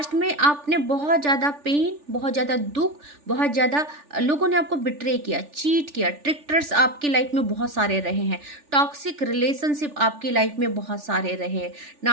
में आपने बहुत ज़्यादा पेन, बहुत ज़्यादा दुख, बहुत ज़्यादा लोगों ने आपको बिट्रे किया, चीट किया, ट्रिक्टर्स आपकी लाइफ में बहुत सारे रहे हैं, टॉक्सिक रिलेशनशिप आपकी लाइफ में बहुत सारे रहे हैं,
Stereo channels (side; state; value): left; late; 3.4 ms